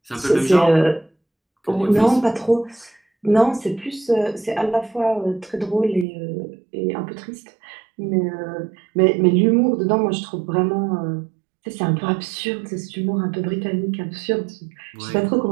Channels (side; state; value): left; drops out; at 6.1 s